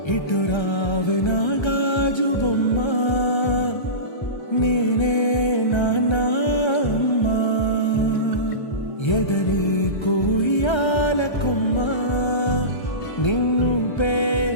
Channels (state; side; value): late; right; 1.3 ms